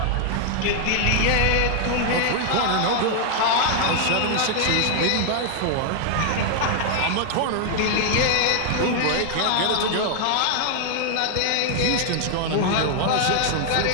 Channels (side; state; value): both; different; correlation 0.00